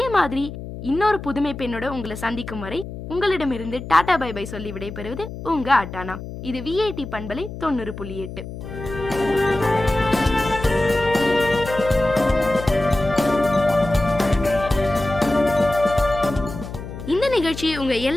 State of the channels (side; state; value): left; noise; hum, 10 dB below the sound